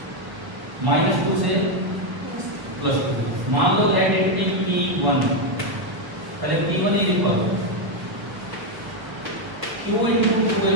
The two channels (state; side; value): late; left; 1.1 ms